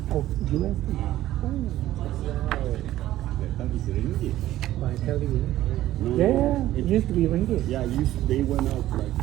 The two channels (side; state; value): left; quieter; 14.2 dB